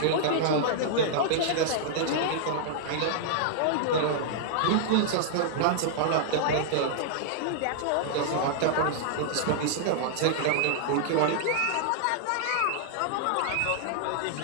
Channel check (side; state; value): both; different; correlation -0.01